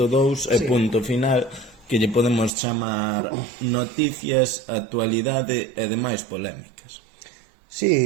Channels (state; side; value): drops out; left; at 2.5 s